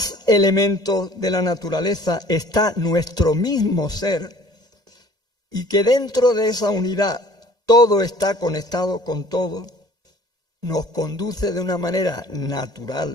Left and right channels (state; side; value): late; left; 1.8 ms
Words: elementos de la naturaleza está nuestro mismo ser y que dentro de esa unidad todo está conectado con todo, nos conduce de una manera